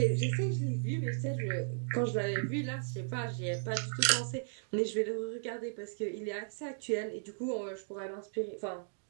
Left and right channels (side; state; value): left; silent; digital silence